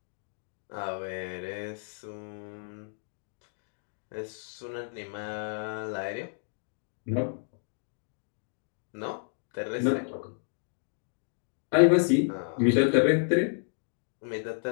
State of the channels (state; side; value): silent; right; digital silence